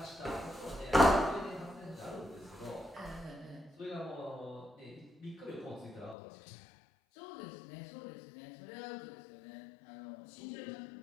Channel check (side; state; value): right; drops out; at 6.2 s